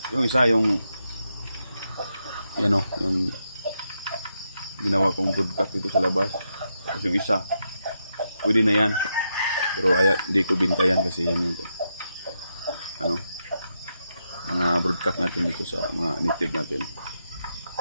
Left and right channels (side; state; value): both; inverted; correlation -0.84